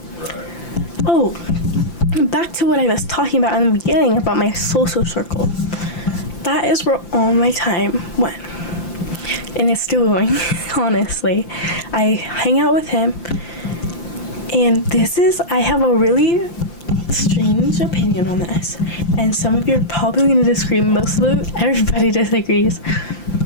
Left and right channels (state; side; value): late; right; 5.8 ms